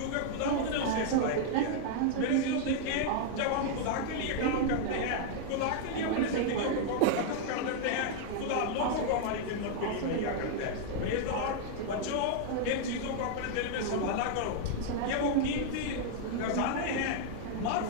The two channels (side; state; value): both; different; correlation 0.00